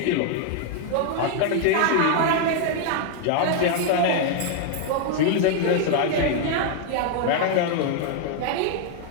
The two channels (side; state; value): both; different; correlation 0.00